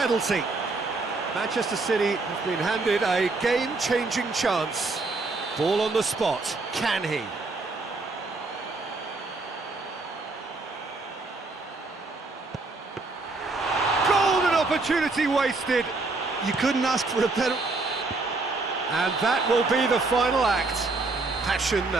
Manchester City have been handed a game-changing chance. Ball on the spot. Can he? Golden opportunity wasted. You couldn't ask for a better... And that will be the final act. Passion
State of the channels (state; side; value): quieter; left; 3.5 dB